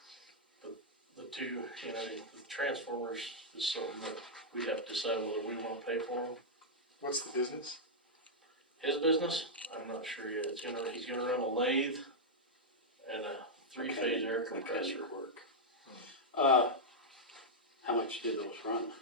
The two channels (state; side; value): normal; both; correlation -0.05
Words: But the two, the transformers is something that we have to decide whether we wanna pay for them. What's the business? His business, I'm not sure yet, he's gonna run a lathe and a 3-phase air compressor. Mechanic work. How much do those run?